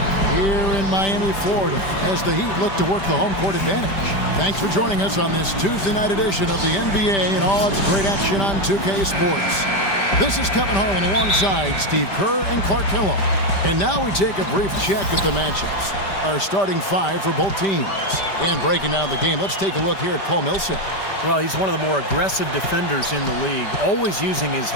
here in Miami, Florida, as the Heat look to work the home court advantage. Thanks for joining us on this Tuesday night edition of the NBA and all its great action on 2K Sports. This is Kevin Harlan alongside Steve Kerr and Clark Hillo. And now we take a brief check at the matchups. Our starting five for both teams. And breaking down the game, let's take a look here at Paul Millsap. Well, he's one of the more aggressive defenders in the league, always using his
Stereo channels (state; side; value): late; right; 5.1 ms